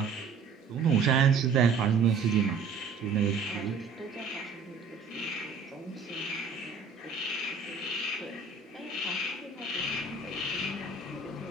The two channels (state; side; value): quieter; left; 5.0 dB